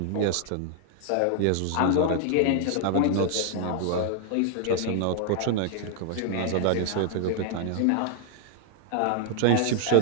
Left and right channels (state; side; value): different; both; correlation 0.00